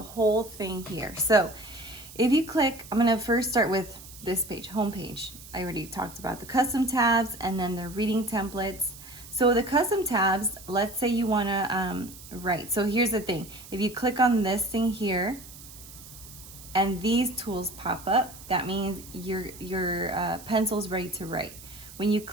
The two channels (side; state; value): right; noise; hiss, 17 dB below the sound